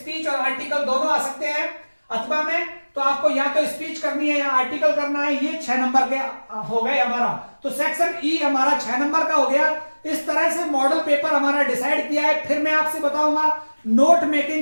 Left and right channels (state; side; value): inverted; both; correlation -1.00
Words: और आर्टिकल दोनों आ सकते हैं। अथवा में तो आपको या तो स्पीच करनी है या आर्टिकल करना है। ये 6 नंबर के हो गए हमारा। तो सेक्शन ई हमारा 6 नंबर का हो गया। इस तरह से मॉडल पेपर हमारा डिसाइड किया है। फिर मैं आपसे बताऊंगा नोट